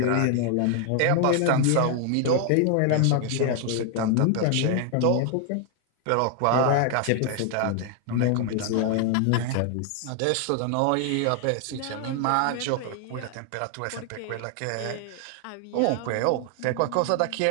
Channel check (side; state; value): both; different; correlation 0.00